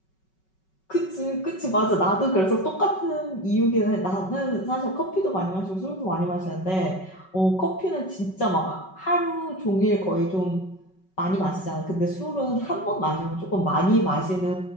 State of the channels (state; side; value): late; right; 5.3 ms